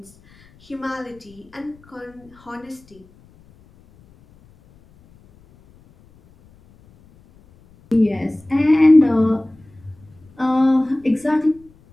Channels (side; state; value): left; noise; rumble, 28 dB below the sound